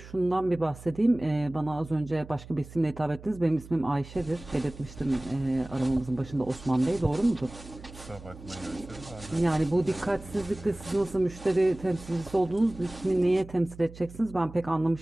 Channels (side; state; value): right; noise; hum, 17 dB below the sound